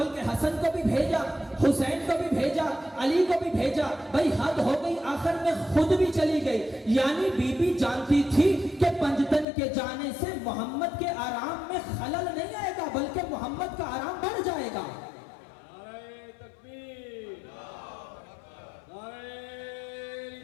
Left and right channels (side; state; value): right; drops out; at 9.5 s